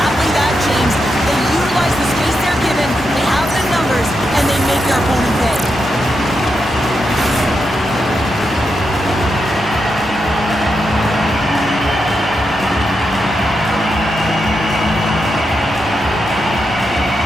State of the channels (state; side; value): normal; both; correlation 0.85